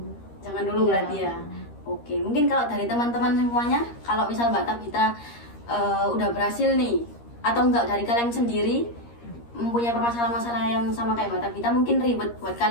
jangan dulu Ya. berarti ya. Oke, mungkin kalau dari teman-teman semuanya, kalau misal Mbak Tabita udah berhasil nih, atau enggak dari kalian sendiri mempunyai permasalahan-masalah yang sama kayak Mbak Tabita, mungkin ribet buat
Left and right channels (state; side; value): late; right; 13 ms